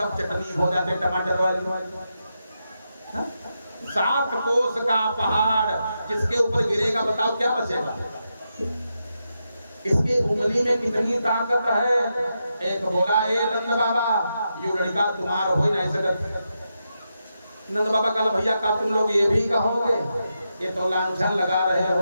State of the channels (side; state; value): both; inverted; correlation -0.86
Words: चटनी हो जाते टमाटर वाली। 7 कोस का पहाड़ जिसके ऊपर गिरेगा बताओ क्या बचेगा। इसके उंगली में कितनी ताकत है। एक बोला ए नंद बाबा ये लड़का तुम्हारा हो ही नहीं सकता। नंद बाबा कल भैया का तुम लोग ये भी कहोगे, ये तो लांछन लगा रहे